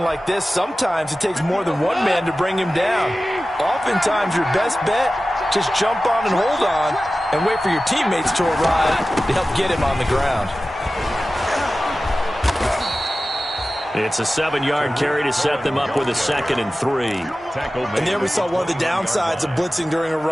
like this, sometimes it takes more than one man to bring him down. Oftentimes, your best bet, just jump on and hold on and wait for your teammates to arrive to help get him on the ground. It's a 7-yard carry to set them up with a 2nd and 3. And there we saw one of the downsides of blitzing during a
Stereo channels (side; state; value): both; normal; correlation 0.95